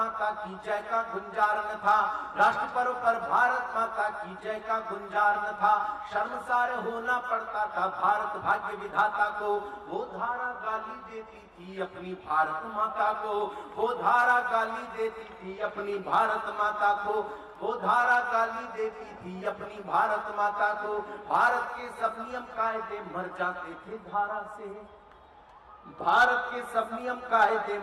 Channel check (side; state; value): both; identical; correlation 1.00